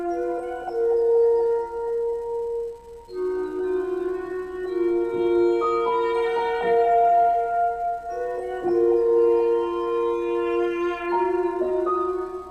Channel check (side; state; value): both; identical; correlation 1.00